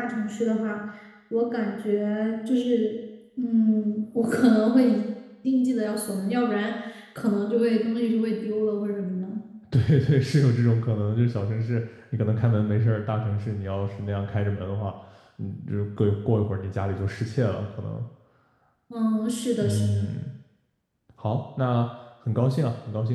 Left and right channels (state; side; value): identical; both; correlation 1.00